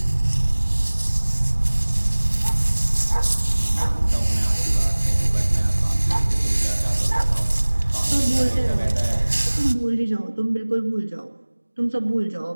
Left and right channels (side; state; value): both; inverted; correlation -1.00